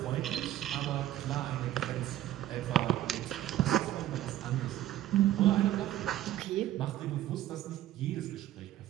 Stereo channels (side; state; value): left; quieter; 13.2 dB